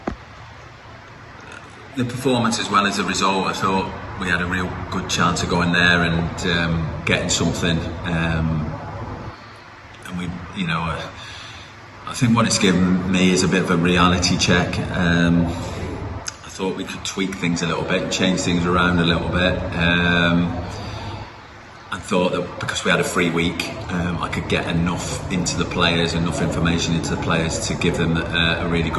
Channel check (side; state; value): both; identical; correlation 1.00